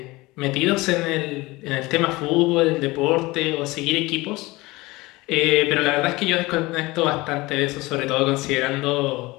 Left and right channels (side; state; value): right; quieter; 21.4 dB